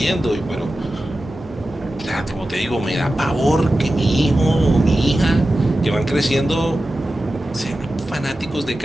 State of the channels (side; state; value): both; normal; correlation 0.93